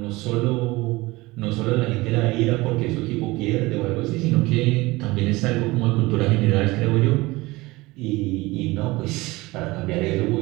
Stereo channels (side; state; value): left; quieter; 21.2 dB